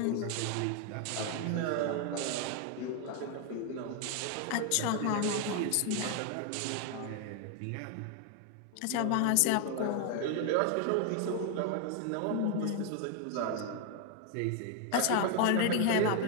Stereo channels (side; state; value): both; different; correlation 0.01